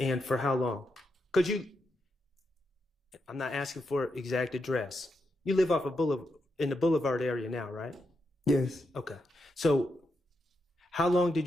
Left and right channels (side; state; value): both; normal; correlation 0.84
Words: for how long? I'm not asking for exact address. You live off of in the Boulevard area now, right? Yes. Okay. So how long did